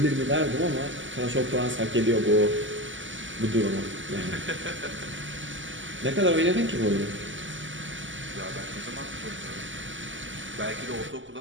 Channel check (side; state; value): left; late; 0.55 ms